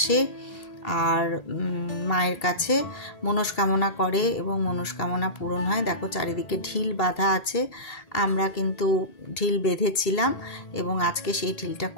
আর মায়ের কাছে মনস্কামনা করে এবং মনস্কামনা পূরণ হয়। দেখো চারিদিকে ঢিল বাঁধা আছে, আমরা কিন্তু ঢিল বেঁধেছিলাম এবং আজকে সেই ঢিলটা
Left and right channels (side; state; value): right; late; 1.8 ms